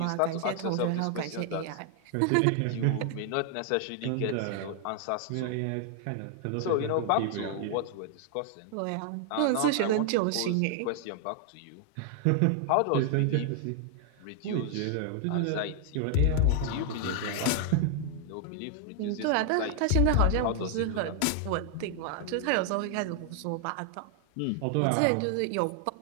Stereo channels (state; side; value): different; both; correlation 0.00